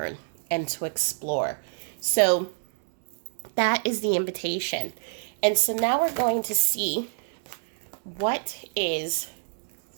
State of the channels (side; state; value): left; silent; digital silence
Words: and to explore. So that is the invitation. And so now we're going to see what is